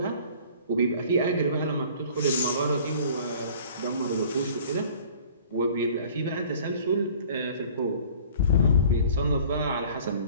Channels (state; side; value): inverted; both; correlation -0.49